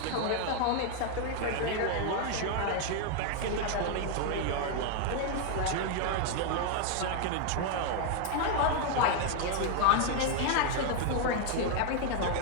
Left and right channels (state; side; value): different; both; correlation 0.00